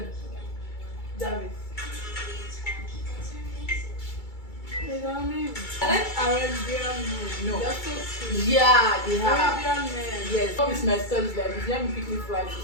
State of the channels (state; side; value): late; right; 2.3 ms